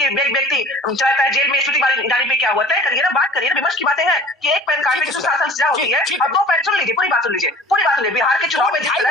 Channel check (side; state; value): both; normal; correlation 0.45